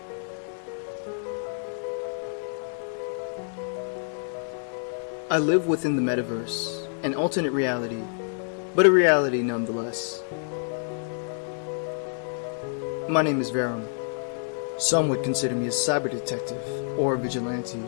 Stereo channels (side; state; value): right; silent; digital silence